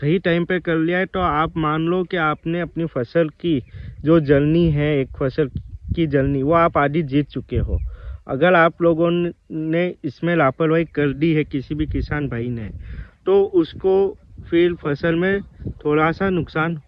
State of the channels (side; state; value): both; identical; correlation 1.00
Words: टाइम पे कर लिया है, तो आप मान लो कि आपने अपनी फसल की जो जलनी है, एक फसल की जलनी, वो आप आधी जीत चुके हो। अगर आप लोगों ने इसमें लापरवाही कर दी है, किसी भी किसान भाई ने, तो उसको फिर फसल में थोड़ा सा नुकसान